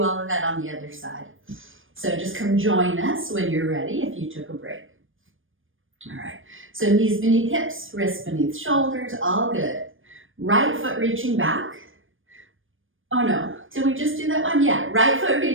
all of that on the other side. So just come join us when you're ready if you took a break. All right, so knees beneath hips, wrists beneath shoulders, all good. Right foot reaching back. Oh no, did we just do that one? Yeah, right foot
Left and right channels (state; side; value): late; left; 0.58 ms